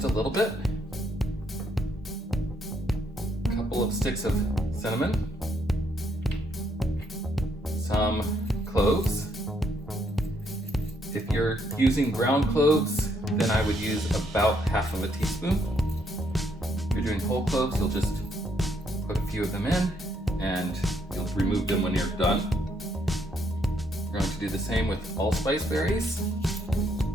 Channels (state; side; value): normal; both; correlation 0.73